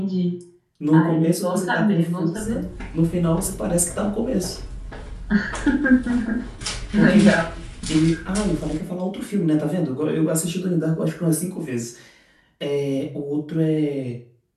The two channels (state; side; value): identical; both; correlation 1.00